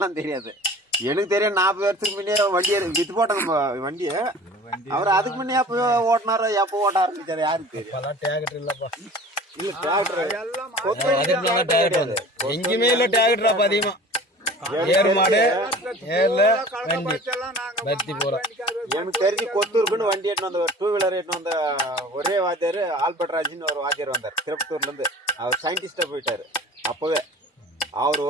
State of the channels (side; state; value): both; normal; correlation 0.43